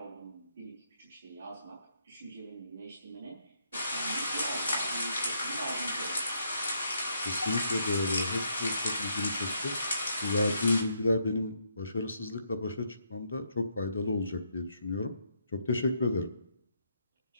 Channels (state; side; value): inverted; both; correlation -0.74